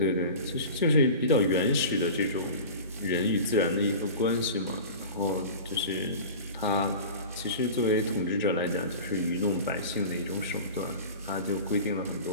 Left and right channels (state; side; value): inverted; both; correlation -0.35